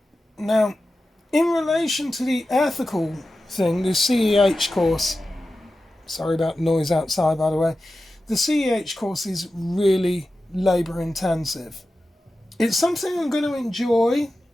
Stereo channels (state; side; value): normal; both; correlation 0.93